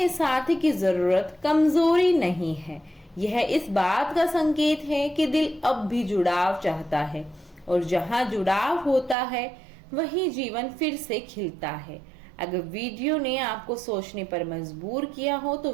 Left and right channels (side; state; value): left; drops out; at 9.2 s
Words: साथी की जरूरत कमजोरी नहीं है, यह इस बात का संकेत है कि दिल अब भी जुड़ाव चाहता है और जहां जुड़ाव होता है वहीं जीवन फिर से खिलता है। अगर वीडियो ने आपको सोचने पर मजबूर किया हो तो